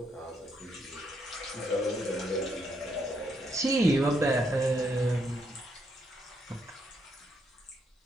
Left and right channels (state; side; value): normal; both; correlation 0.76